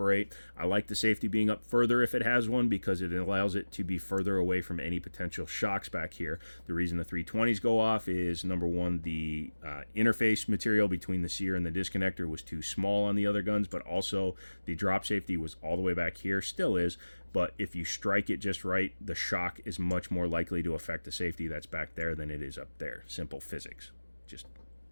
I like the safety being up further if it has one, because it allows it to be further away from any potential shocks back here. The reason the 320s go off is, number one, the interface material between the sear and the disconnector was too small on the other guns, but also the drop safety was all the way back here, still is, but if you strike it just right, the shock is much more likely to affect the safety that's back there than it is up there. Simple physics, just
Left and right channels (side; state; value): both; inverted; correlation -1.00